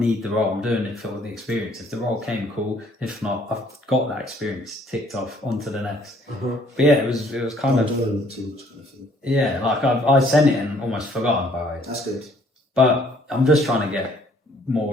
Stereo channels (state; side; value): normal; both; correlation 0.61